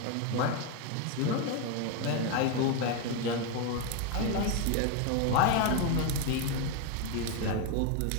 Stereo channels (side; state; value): both; different; correlation 0.01